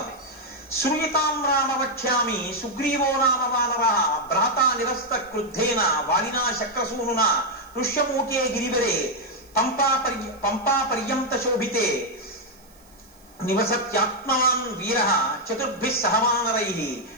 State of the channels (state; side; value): noise; right; hiss, 29 dB below the sound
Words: శ్రూయతాం రామ వక్ష్యామి సుగ్రీవో నామ వానర భ్రాతా నిరస్త క్రుద్ధేన వాలినా శక్రసూనునా ఋష్యమూకే గిరివరే పంపా పర్యంత శోభితే నివసత్యాత్మవాన్ వీర చతుర్భిః సహ వానరైః